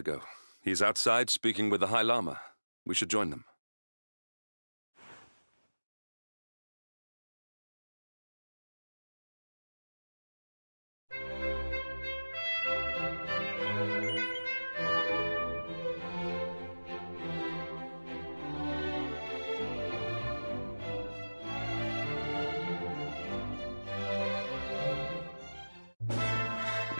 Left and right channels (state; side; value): inverted; both; correlation -1.00